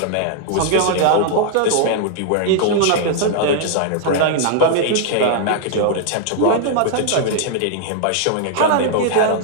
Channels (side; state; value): both; different; correlation -0.01